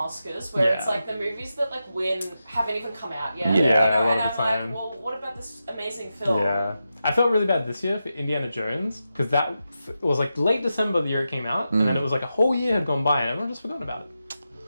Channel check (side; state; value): both; inverted; correlation -0.89